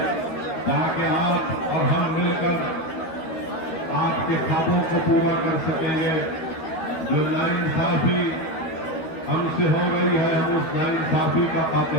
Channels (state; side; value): late; right; 13 ms